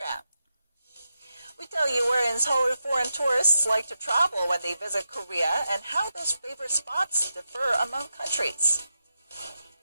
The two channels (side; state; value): both; inverted; correlation -0.88